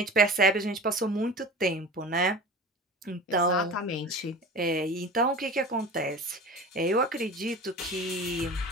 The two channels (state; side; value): normal; both; correlation 0.35